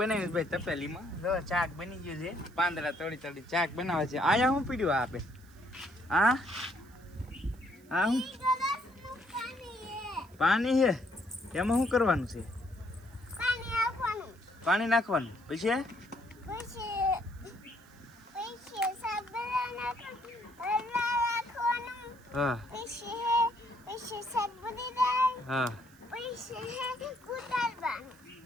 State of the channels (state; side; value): noise; right; hiss, 29 dB below the sound